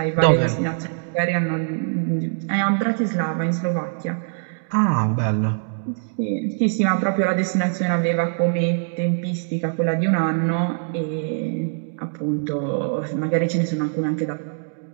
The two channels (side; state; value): left; silent; digital silence